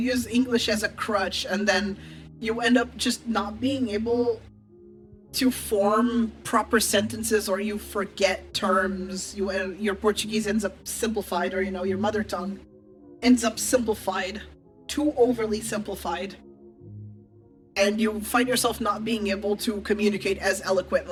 English as a crutch, and then you end up just not being able to form proper sentences, or you forget terms. Your Portuguese ends up simplified, or your mother tongue ends up simplified, too overly simplified, and you find yourself not being able to communicate as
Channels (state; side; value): identical; both; correlation 1.00